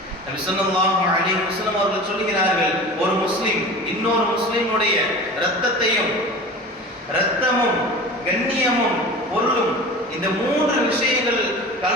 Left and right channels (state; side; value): normal; both; correlation 0.36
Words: நபி ஸல்லல்லாஹு அலைஹி வஸல்லம் அவர்கள் சொல்கிறார்கள், ஒரு முஸ்லிம் இன்னொரு முஸ்லிமுடைய இரத்தமும் கண்ணியமும் பொருளும் இந்த 3 விஷயங்கள்